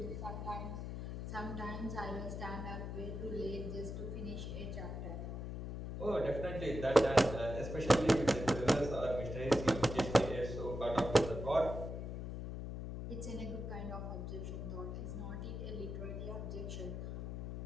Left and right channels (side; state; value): left; noise; hum, 5 dB below the sound